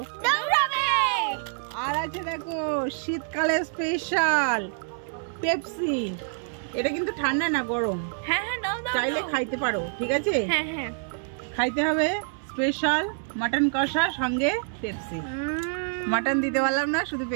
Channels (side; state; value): left; silent; 60 dB below the other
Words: আর আছে দেখো শীতকালে স্পেশাল পেপসি। এটা কিন্তু ঠান্ডা না, গরম। চাইলে খাইতে পারো, ঠিক আছে? খাইতে হবে। স্পেশাল মাটন কষা সঙ্গে পেপসি। মাটন দিতে পারলাম না, শুধু